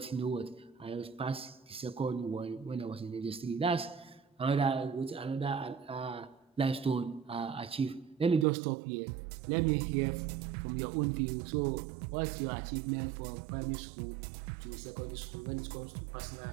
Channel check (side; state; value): left; drops out; at 8.5 s